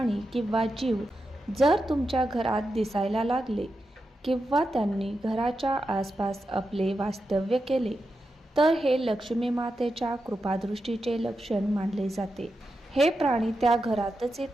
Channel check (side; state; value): both; normal; correlation 0.88